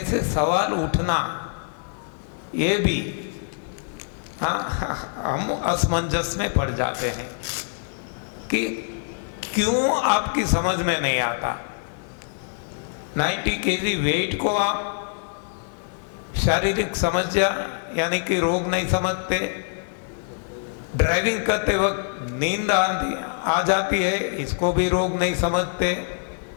सवाल उठना ये भी, हाँ, हम असमंजस में पड़ जाते हैं कि क्यों आपकी समझ में नहीं आता। 90 kg वेट को आप शारीरिक समस्या यानी कि रोग नहीं समझते, ड्राइविंग करते वक्त नींद आ जाती है, इसको भी रोग नहीं समझते।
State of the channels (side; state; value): right; silent; digital silence